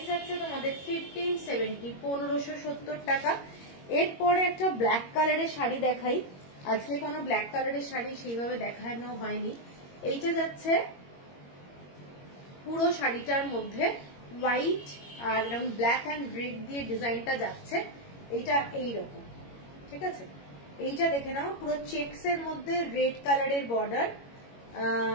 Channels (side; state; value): right; late; 21 ms